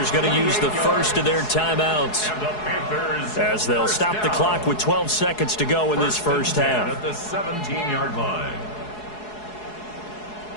going to use the first of their timeouts as they'll stop the clock with 12 seconds to go in this first half. At the 17-yard line.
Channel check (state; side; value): late; right; 4.7 ms